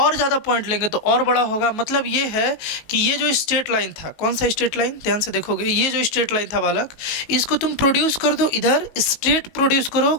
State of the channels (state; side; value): late; right; 19 ms